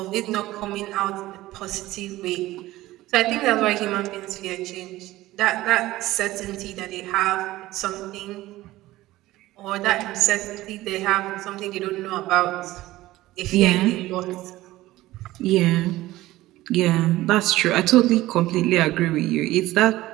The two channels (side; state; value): left; quieter; 16.9 dB